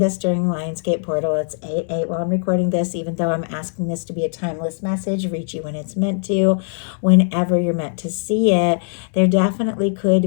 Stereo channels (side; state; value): right; silent; 65 dB below the other